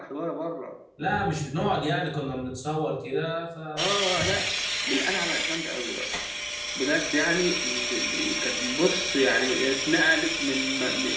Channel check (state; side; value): identical; both; correlation 1.00